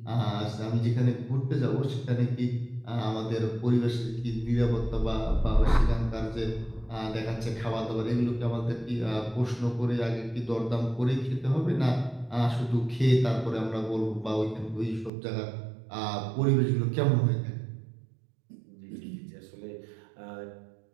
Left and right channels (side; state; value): left; drops out; at 15.1 s